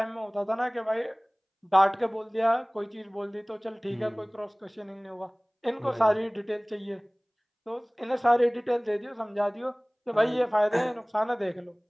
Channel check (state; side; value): identical; both; correlation 1.00